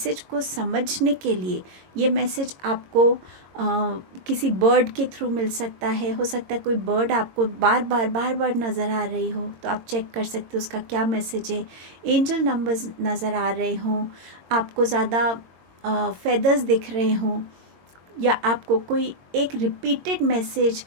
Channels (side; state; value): left; late; 22 ms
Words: को समझने के लिए। ये मैसेज आपको किसी बर्ड के थ्रू मिल सकता है। हो सकता है कोई बर्ड आपको बार बार नज़र आ रही हो, तो आप चेक कर सकते हो उसका क्या मैसेज है। एंजल नंबर्स नज़र आ रहे हों, आपको ज़्यादा फेदर्स दिख रहे हों, या आपको कोई एक रिपीटेड मैसेज